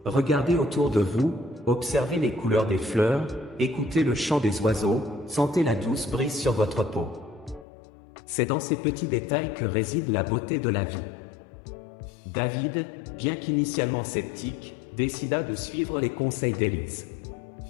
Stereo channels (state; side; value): drops out; right; at 7.7 s